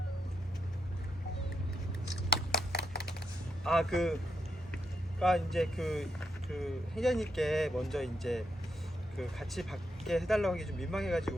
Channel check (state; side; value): normal; both; correlation 0.81